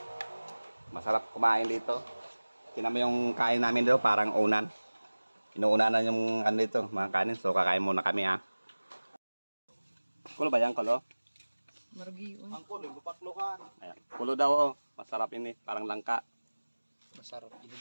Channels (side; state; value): both; inverted; correlation -1.00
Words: Masarap kumain dito. Tingnan mo yung kain namin dito, parang unan. Inuunanan yung ano dito, mga kanin. So, kakain muna kami, ha. Kulo ba yan, kulo? Margiyon. Ang kulo, bupaklukan. Ayan. Kulo daw, oh. Masarap yun, eh. Parang langka. Masarap.